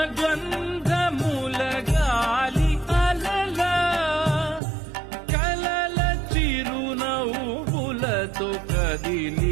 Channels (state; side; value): drops out; left; at 4.6 s